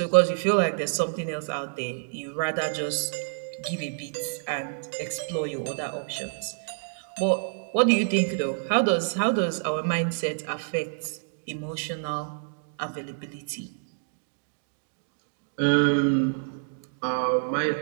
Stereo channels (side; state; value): left; silent; digital silence